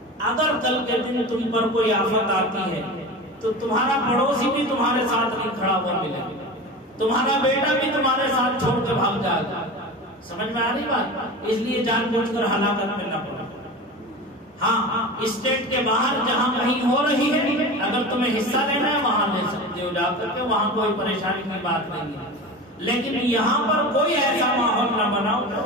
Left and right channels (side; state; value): both; normal; correlation 0.30